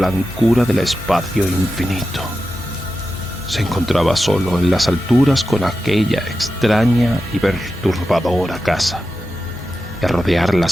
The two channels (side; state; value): both; normal; correlation 0.91